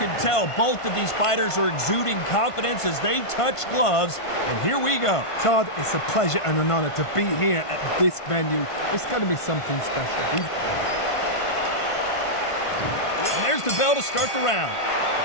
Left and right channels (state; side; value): late; right; 1.5 ms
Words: tell both of these fighters are exuding confidence as they touch gloves, and here we go. Todd, it's a pleasure and an honor to be here at this venue. It's going to be something special. And there's the bell to start the round.